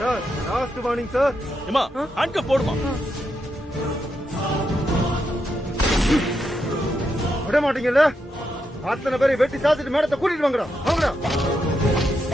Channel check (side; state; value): both; normal; correlation 0.83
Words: Sir last warning sir. ஏமா, ஹேண்ட் கப் போடுமா. விட மாட்டீங்கல்ல? அத்தனை பேரை வெட்டி சாத்திட்டு மேடத்தை கூட்டிட்டு வாங்கடா. வாங்கடா.